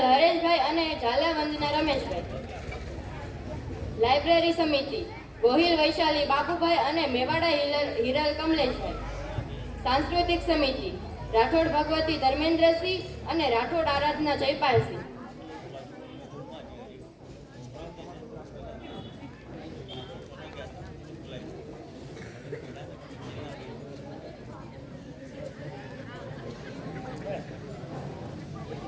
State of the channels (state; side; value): identical; both; correlation 1.00